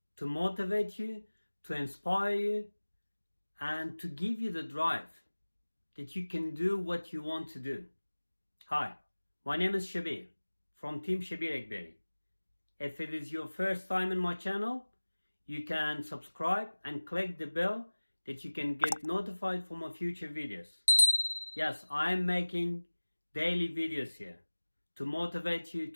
to motivate you, to inspire you, and to give you the drive that you can do what you want to do. Hi, my name is Shabir from Team Shabir Akbari. If it is your first time in my channel, you can subscribe and click the bell that you can get notified for my future videos. Yes, I am making daily videos here to motivate you,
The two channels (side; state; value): both; inverted; correlation -1.00